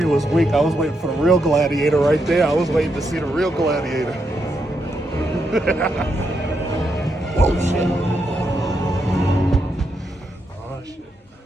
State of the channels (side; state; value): both; normal; correlation 0.81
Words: was weak. I was waiting for the real Gladiator right there. I was waiting to see the real Gladiator. Whoa, shit. Oh, shit.